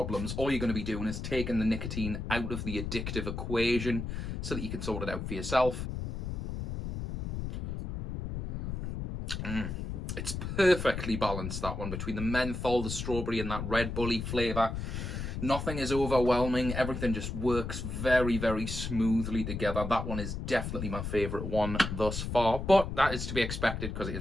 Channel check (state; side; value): noise; left; rumble, 5 dB below the sound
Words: All you're going to be doing is taking the nicotine out of the addictive equation so that you can sort it out for yourself. It's perfectly balanced, that one, between the menthol, the strawberry and that Red Bully flavour. Nothing is overwhelming. Everything just works very, very smoothly together. That one is definitely my favourite one thus far, but that is to be expected because it